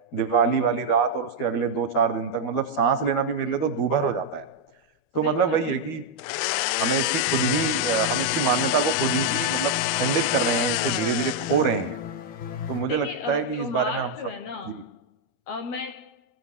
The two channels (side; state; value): right; late; 12 ms